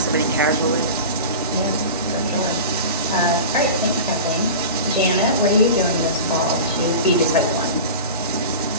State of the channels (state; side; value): inverted; both; correlation -0.32